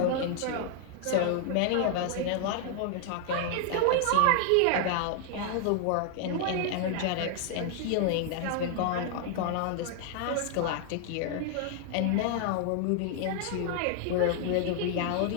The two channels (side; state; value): both; different; correlation 0.00